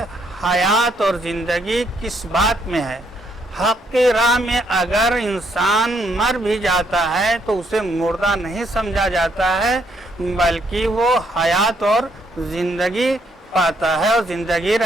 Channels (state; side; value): normal; both; correlation 0.72